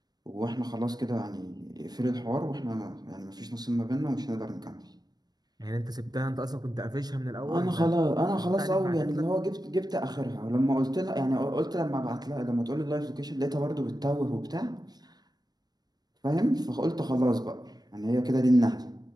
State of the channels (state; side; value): late; left; 0.19 ms